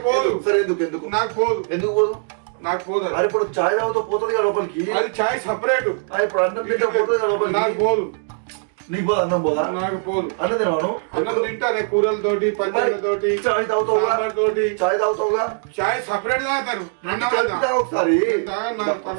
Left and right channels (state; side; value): silent; left; 65 dB below the other